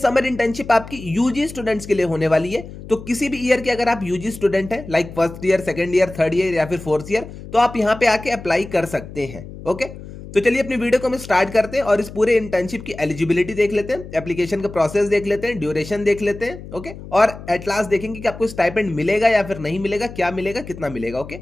इंटर्नशिप आपकी यूजी स्टूडेंट्स के लिए होने वाली है। तो किसी भी ईयर के अगर आप यूजी स्टूडेंट हैं, like first year, second year, third year या फिर फोर्थ ईयर, तो आप यहाँ पे आके अप्लाई कर सकते हैं। ओके, तो चलिए अपनी वीडियो को हम स्टार्ट करते हैं और इस पूरे इंटर्नशिप की एलिजिबिलिटी देख लेते हैं, एप्लीकेशन का प्रोसेस देख लेते हैं, ड्यूरेशन देख लेते हैं। ओके, और एट लास्ट देखेंगे कि आपको स्टाइपेंड मिलेगा या फिर नहीं मिलेगा, क्या मिलेगा, कितना मिलेगा। ओके,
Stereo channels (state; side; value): noise; left; hum, 14 dB below the sound